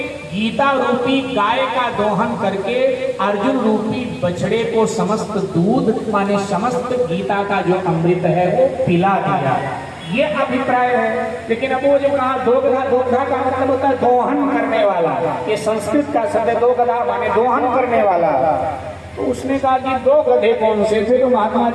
गीता रूपी गाय का दोहन करके अर्जुन रूपी बछड़े को समस्त दूध माने समस्त गीता का जो अमृत है वो पिला दिया, ये अभिप्राय है। लेकिन अब वो जो कहा दोगधा, दोगधा का मतलब होता है दोहन करने वाला, ये संस्कृत का शब्द है दोगधा माने दोहन करने वाला। तो उसने कहा कि 2 गधे कौन से थे? तो महात्मा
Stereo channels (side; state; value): both; identical; correlation 1.00